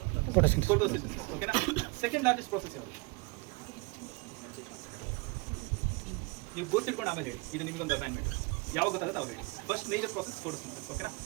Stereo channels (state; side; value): quieter; left; 26.2 dB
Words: ಫೋಟೋಸಿಂಥಸಿಸ್. ಓಕೆನಾ? ಸೆಕೆಂಡ್ ಲಾರ್ಜೆಸ್ಟ್ ಪ್ರಾಸೆಸ್ ಯಾವುದು? ನೀವು ಗೊತ್ತಿಟ್ಕೊಂಡು ಆಮೇಲೆ ಹೇಳಿ, ಇದು ನಿಮ್ಗೊಂದು ಅಸೈನ್ಮೆಂಟ್. ಯಾವಾಗ ಗೊತ್ತಾಗುತ್ತೆ ಅವ್ರು ಹೇಳಿ. First major process photosynthesis. ಓಕೆನಾ?